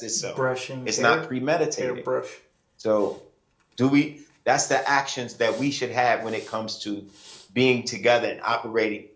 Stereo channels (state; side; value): identical; both; correlation 1.00